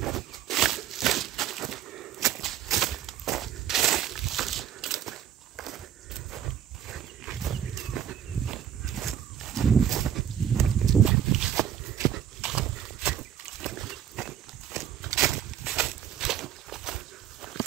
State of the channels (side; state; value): left; quieter; 10.0 dB